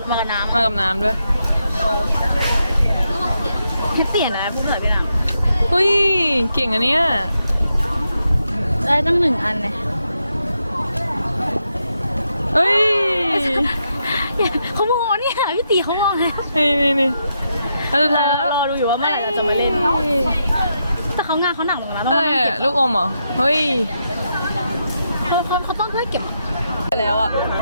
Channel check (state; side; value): inverted; both; correlation -0.83